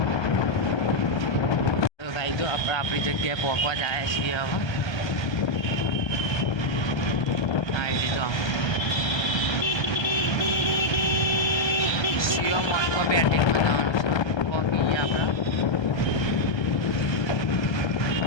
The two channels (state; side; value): late; right; 1.3 ms